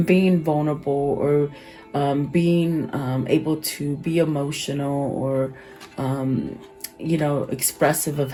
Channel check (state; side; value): identical; both; correlation 1.00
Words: being vulnerable, or being able to be emotional, or you know, expressive of